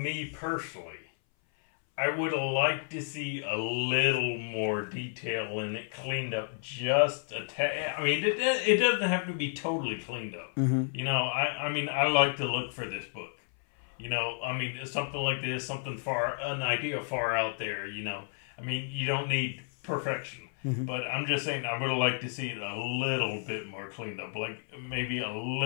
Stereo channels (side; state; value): right; silent; 57 dB below the other